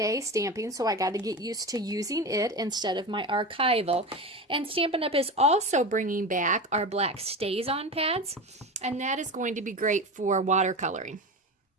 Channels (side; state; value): both; normal; correlation 0.25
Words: stamping, so I got to get used to using it instead of my archival. And Stampin' Up! Is also bringing back our black Stays-On pads, and that is going to be great for watercoloring.